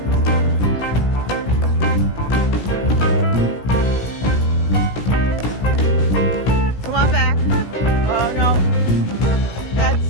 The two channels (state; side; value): late; right; 17 ms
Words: Come on back. Oh no. That's,